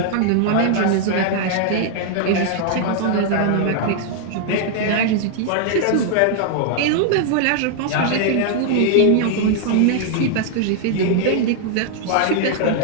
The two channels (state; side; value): different; both; correlation 0.00